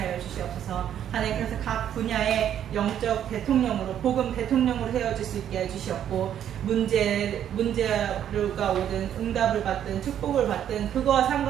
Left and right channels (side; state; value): left; quieter; 10.1 dB